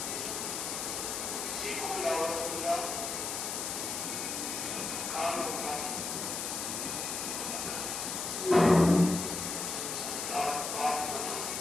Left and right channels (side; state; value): left; noise; hiss, 3 dB below the sound